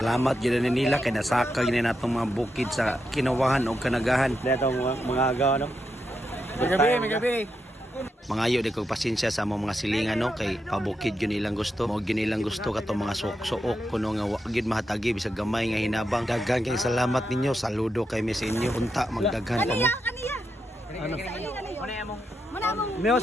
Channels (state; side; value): normal; both; correlation 0.84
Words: Salamat gyud nila kay nasaka gyud natong mga bukid sa Kinawahan og Kanagahan. Datong mga agaw no. Magabi. Mga ayo di kog pasensya sa among mga silingan no kay pabukid gyud nilang gusto. Mao gyud nilang gusto katong mga suok-suok kuno nga wa gyud mahatagi bisag gamay nga hinabang. Daghan kay salamat ninyo. Saludo kay mi sa inyo. Unta magdaghan pa mo. Ano? Meos